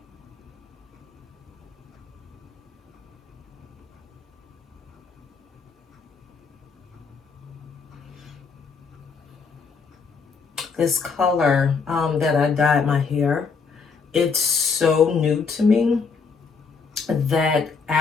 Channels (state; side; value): quieter; right; 5.2 dB